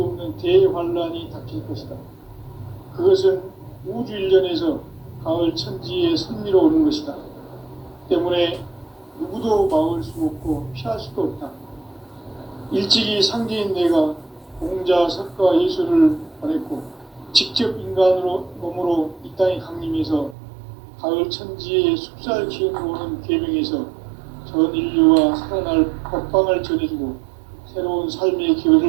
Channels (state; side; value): drops out; left; at 20.4 s